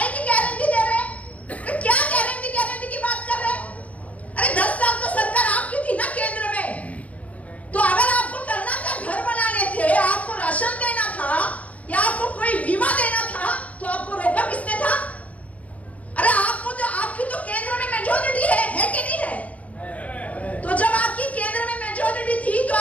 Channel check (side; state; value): right; late; 0.068 ms